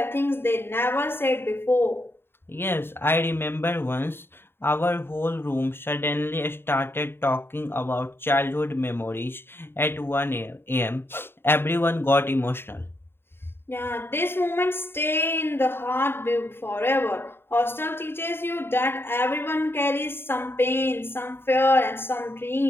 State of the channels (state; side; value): late; right; 0.11 ms